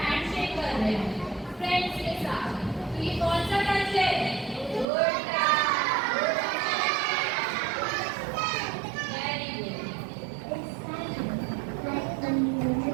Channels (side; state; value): left; drops out; at 4.9 s